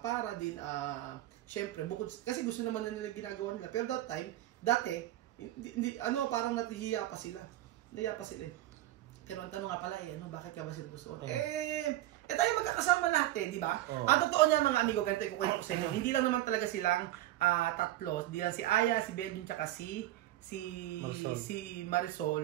para din, syempre, bukod, kasi gusto naman na nila ginagawa nila. Pero dati, parang natihiya pa sila. Nahiya pa sila eh. Pero ang tanong nga pala bakit ka ba sila gusto? Tayo magkakasama lahat di ba? Ang totoo niya mga amigo, ganito ikukwento ko sa inyo. Hindi lang naman talaga silang tatlo. Hindi lang si Aya, si Belgium, tsaka si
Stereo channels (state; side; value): quieter; left; 14.9 dB